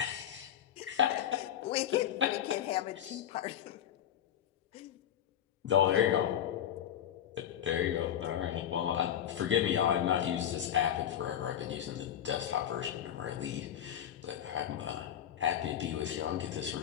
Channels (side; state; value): right; quieter; 10.1 dB